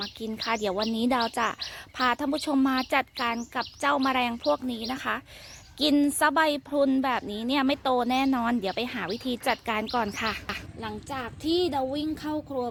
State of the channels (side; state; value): both; identical; correlation 1.00